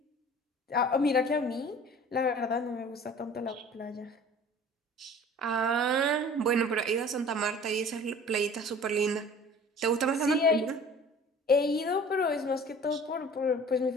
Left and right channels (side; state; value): both; normal; correlation 0.45